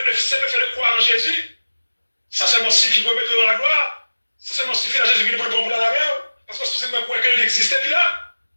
fait de croire en Jésus, ça seulement suffit pour mettre dans la gloire, ça seulement suffit à Jésus qui nous prend pour la guerre, parce que c'est même croire qu'il existait là.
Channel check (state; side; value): inverted; both; correlation -1.00